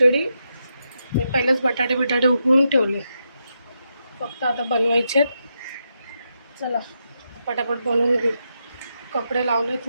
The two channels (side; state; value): both; inverted; correlation -0.84